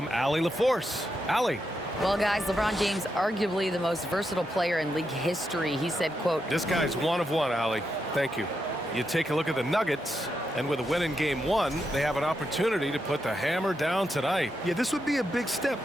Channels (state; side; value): normal; both; correlation 0.84